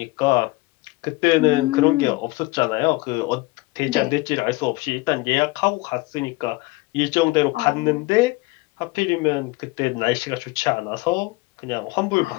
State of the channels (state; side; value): quieter; right; 22.6 dB